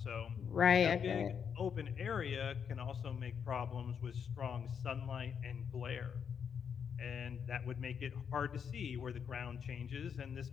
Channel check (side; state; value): right; quieter; 7.2 dB